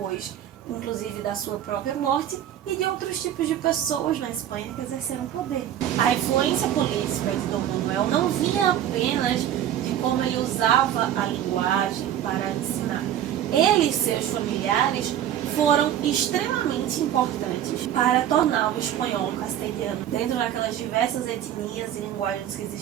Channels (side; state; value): left; quieter; 10.9 dB